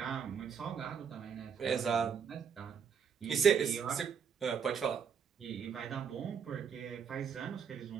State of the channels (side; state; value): left; quieter; 6.9 dB